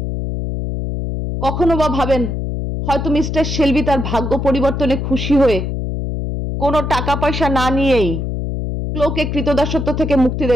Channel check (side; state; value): left; noise; hum, 3 dB below the sound